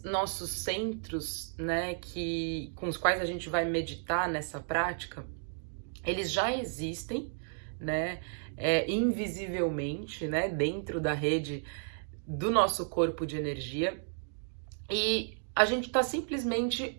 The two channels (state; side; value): silent; left; digital silence